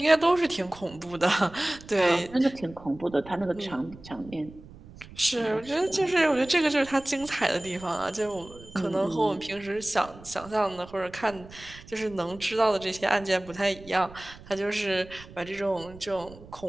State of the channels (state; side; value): noise; right; rumble, 19 dB below the sound